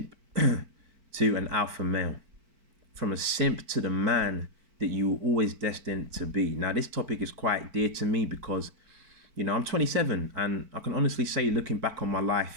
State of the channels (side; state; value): left; late; 4.5 ms